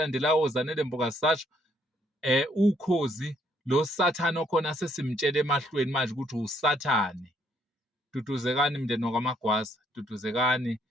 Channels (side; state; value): both; normal; correlation 0.69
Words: oZanele Mbokazi, sasho ukhozi lo sathane okhona sesimtshela emahlweni manje ukuthi usathane. Duduzekani mndeni wakwaMagwaza, duduzekani